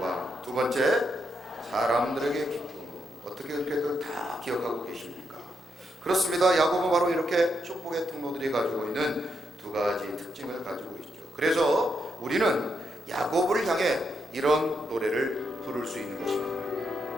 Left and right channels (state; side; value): normal; both; correlation 0.81